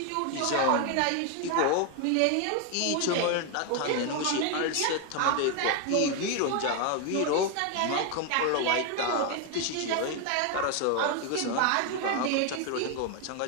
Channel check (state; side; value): different; both; correlation 0.01